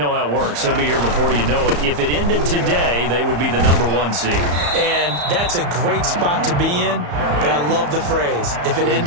how it works. They'll be here before you know it. If it ended today, they would be the #1 seed. And that's a great spot to be in, but I love the phrase, if it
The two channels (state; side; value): late; left; 34 ms